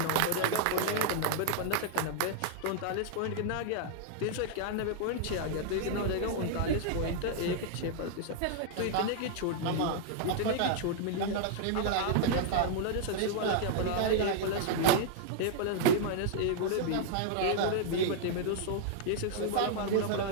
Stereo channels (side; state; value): both; different; correlation -0.01